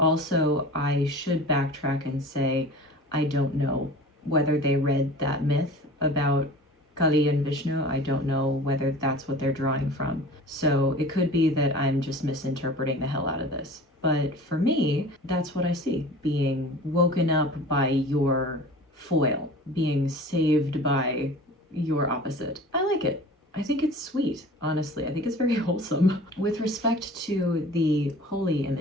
I should backtrack and say I don't know whether they read that myth about Kali and Vishnu. I don't know whether that's what they're drawing from. So it could be that I'm just misinterpreting the hell out of this. But for me, that's what I see. Being woken up by your foil, being saved by your opposite. I like it. I think it's sweet, honestly. I think it's very wholesome. With respect to the holy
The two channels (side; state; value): both; normal; correlation 0.40